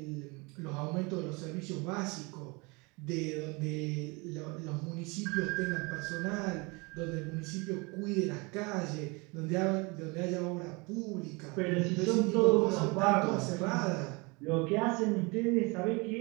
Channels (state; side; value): quieter; left; 27.5 dB